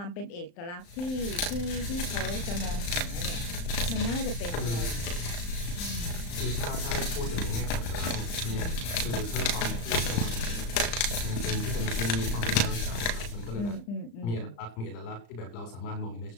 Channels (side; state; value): right; late; 35 ms